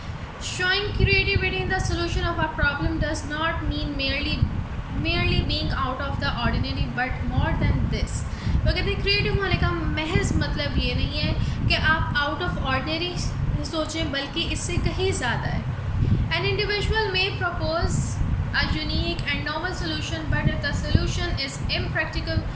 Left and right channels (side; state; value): both; identical; correlation 1.00